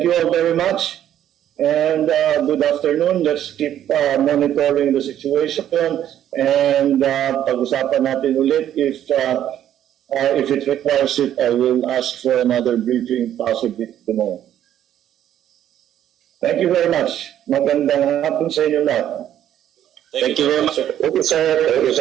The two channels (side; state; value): left; quieter; 11.1 dB